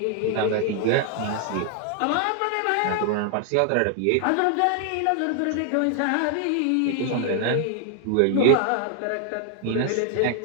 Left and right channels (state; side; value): different; both; correlation 0.00